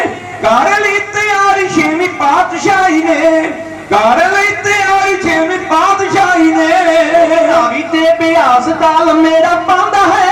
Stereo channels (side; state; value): both; identical; correlation 1.00